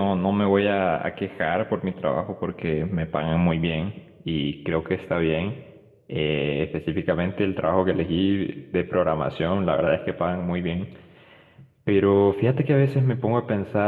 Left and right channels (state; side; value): identical; both; correlation 1.00